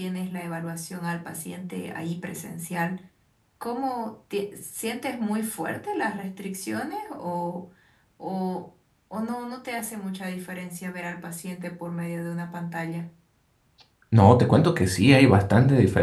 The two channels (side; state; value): both; identical; correlation 1.00